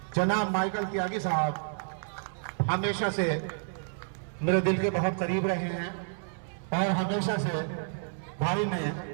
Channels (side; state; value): left; silent; 58 dB below the other